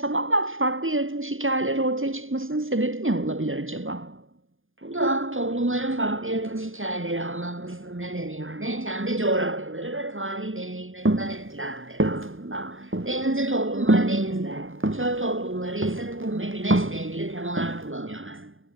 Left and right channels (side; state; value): left; late; 0.59 ms